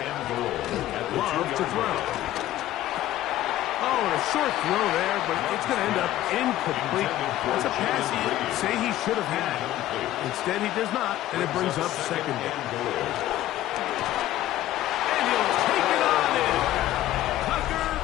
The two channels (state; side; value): quieter; right; 14.1 dB